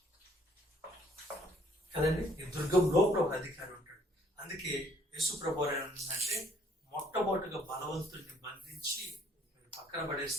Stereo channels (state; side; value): normal; both; correlation 0.63